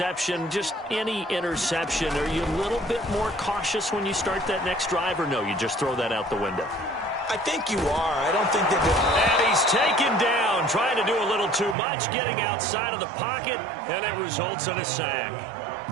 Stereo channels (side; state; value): left; drops out; at 11.8 s